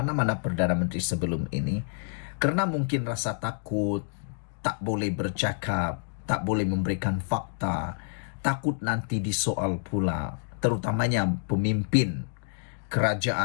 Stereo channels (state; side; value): silent; right; digital silence